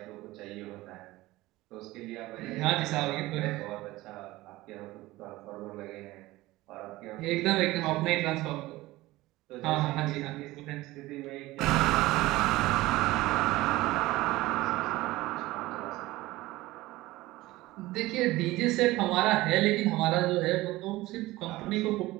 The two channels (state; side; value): quieter; left; 18.5 dB